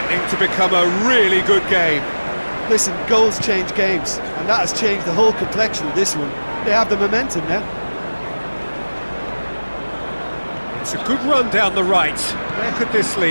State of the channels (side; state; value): both; inverted; correlation -1.00